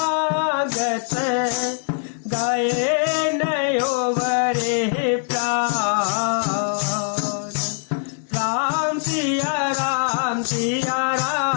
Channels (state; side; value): silent; right; 64 dB below the other